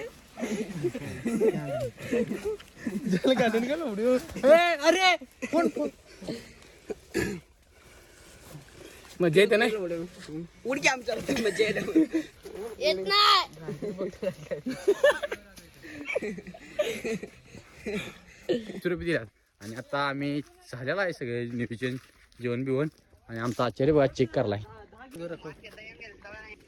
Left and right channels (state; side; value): identical; both; correlation 1.00